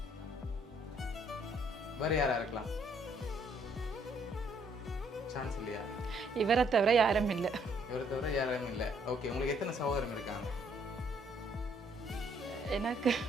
வேறு யாராக இருக்கலாம்? சான்ஸ் இல்லையா? இவரை தவிர யாரும் இல்லை. இவரை தவிர யாரும் இல்லை. ஓகே, உங்களுக்கு எத்தனை சகோதரங்க இருக்காங்க? எனக்கு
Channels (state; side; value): normal; both; correlation 0.67